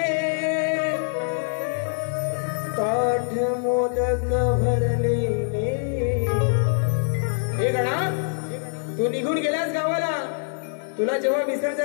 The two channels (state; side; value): silent; right; digital silence